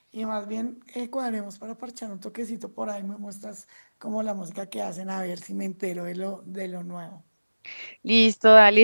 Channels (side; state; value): both; inverted; correlation -1.00